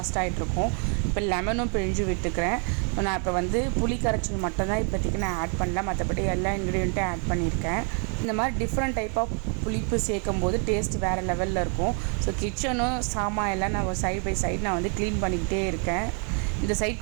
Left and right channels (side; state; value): left; quieter; 39.7 dB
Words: ஆகிட்ருக்கும். இப்போ லெமனும் பிழிஞ்சு விட்டுக்கிறேன். நான் இப்போ வந்து புளி கரைச்சல் மட்டும்தான் இப்போதைக்கு நான் ஆட் பண்ணல, மற்றபடி எல்லா இன்க்ரீடியண்ட்டும் ஆட் பண்ணியிருக்கேன். இந்த மாதிரி டிஃப்ரெண்ட் டைப் ஆஃப் புளிப்பு சேர்க்கும் போது டேஸ்ட் வேறு லெவலில் இருக்கும். ஸோ கிச்சனும் சாமான் எல்லாம் நான் சைட் பை சைடு நான் வந்து க்ளீன் பண்ணிக்கிட்டே இருக்கேன். இந்த